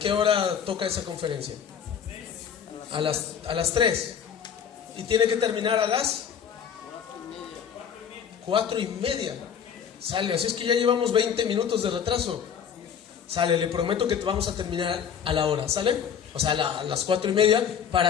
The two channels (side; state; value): right; quieter; 7.8 dB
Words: hora toca esa conferencia? A las 3. ¿Y tiene que terminar a las 4:30? Sale, así es que ya llevamos 20 minutos de retraso. Sale, le prometo que vamos a terminar a la hora, ¿sale? O sea, a las 4:30